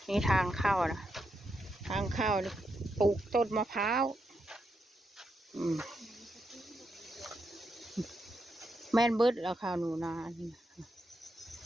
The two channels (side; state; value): both; normal; correlation 0.83